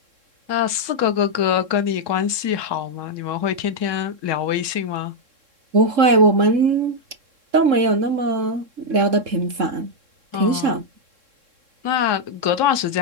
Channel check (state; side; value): late; left; 3.7 ms